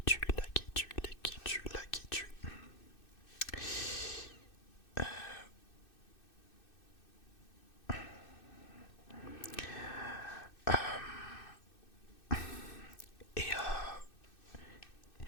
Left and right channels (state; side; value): late; right; 2.6 ms